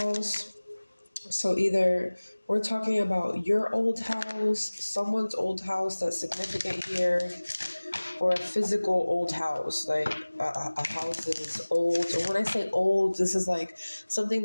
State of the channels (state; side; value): inverted; both; correlation -1.00